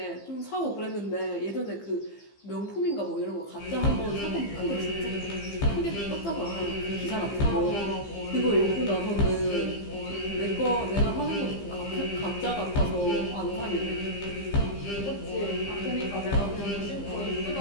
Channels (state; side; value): late; right; 15 ms